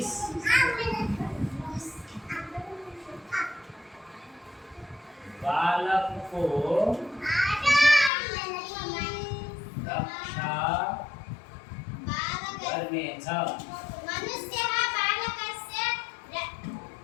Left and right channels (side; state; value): right; drops out; at 8.1 s